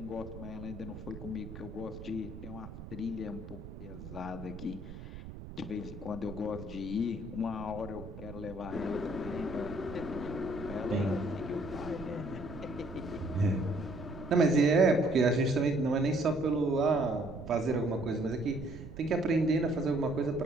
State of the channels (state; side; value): noise; right; rumble, 12 dB below the sound